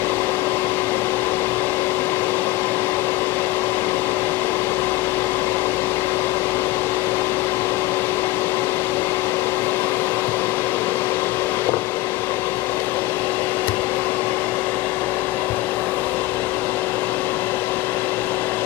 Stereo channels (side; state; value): right; quieter; 17.5 dB